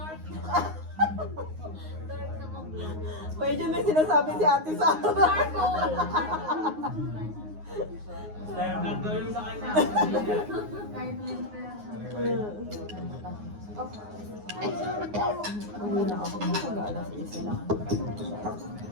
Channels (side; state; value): left; late; 9.6 ms